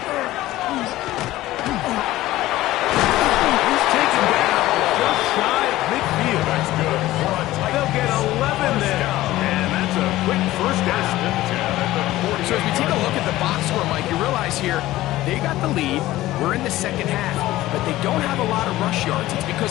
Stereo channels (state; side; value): quieter; right; 16.2 dB